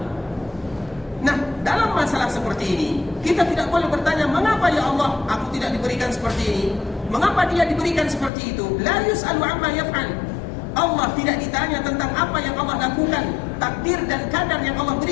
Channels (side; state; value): right; drops out; at 8.3 s